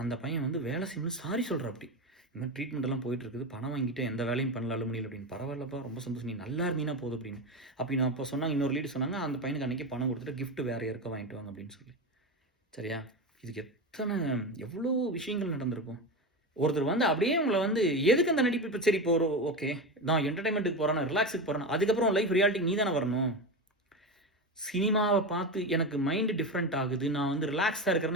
அந்த பையன் வந்து வேலை செய்யணும்னு சாரி சொல்கிற அப்படி இந்த மாதிரி ட்ரீட்மெண்ட்டெல்லாம் போயிட்டுருக்குது, பணம் வாங்கிட்டு எந்த வேலையும் பண்ணல அலுமினியில் அப்படின்னு. பரவாயில்லப்பா, ரொம்ப சந்தோஷம், நீ நல்லா இருந்தீங்கன்னா போதும் அப்படின்னு. அப்படி நான் அப்போ சொன்னாங்க, இன்னொரு லீடு சொன்னாங்க, அந்த பையனுக்கு அன்றைக்கி பணம் கொடுத்துட்டு கிஃப்ட் வேறு யாருக்கோ வாங்கிட்டு வாங்க அப்படின்னு சொல்லி. சரியா? இதுக்கு எவ்வளோ விஷயங்கள் நடந்திருக்கும். ஒருத்தர் வந்து அப்படியே உங்களை வந்து எதுக்கு அந்த நடிப்பு, இப்போ சரி இப்போ ஒரு ஓகே நான் என்டர்டைன்மெண்ட்டுக்கு போகிறேன்னா, ரிலாக்ஸுக்கு போகிறேன்னா, அதுக்கப்புறம் லைஃப் ரியாலிட்டி நீ தானே வரணும். சினிமாவை பார்த்து எனக்கு மைண்டு டிஃப்ரெண்ட் ஆகுது, நான் வந்து ரிலாக்ஸாக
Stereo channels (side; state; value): both; normal; correlation 0.20